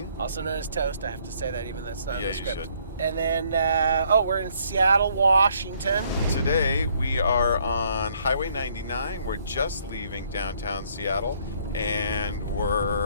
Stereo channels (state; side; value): inverted; both; correlation -0.66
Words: also known as Toast. I have to say that even though that's not in the script. You should. And then, we're in Seattle, Washington. Today we are on Highway 99. We're just leaving downtown Seattle, and